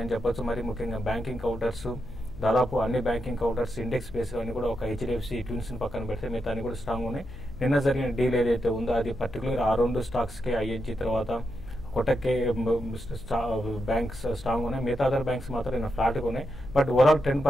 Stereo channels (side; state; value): left; noise; hum, 17 dB below the sound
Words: చెప్పొచ్చు. మరి ముఖ్యంగా బ్యాంకింగ్ కౌంటర్స్, దాదాపు అన్ని బ్యాంకింగ్ కౌంటర్స్ ఇండెక్స్ బేస్ అన్ని కూడా ఒక HDFC ట్విన్స్ పక్కన పెడితే మిగతా అన్ని కూడా స్ట్రాంగ్ ఉన్నాయి. నిన్న జరిగిన డీల్ ఏదైతే ఉందో అది పర్టికులర్ ఆ 2 స్టాక్స్ కి ING తర్వాత కోటక్ బ్యాంక్స్ స్ట్రాంగ్ ఉన్నాయి. మిగతా అదర్ బ్యాంక్స్ మాత్రం నిన్న ఫ్లాట్ గా ఉన్నాయి. బట్ ఓవరాల్ ట్రెండ్